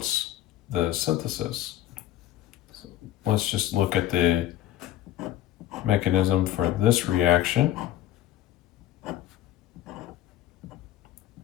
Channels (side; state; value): right; quieter; 13.2 dB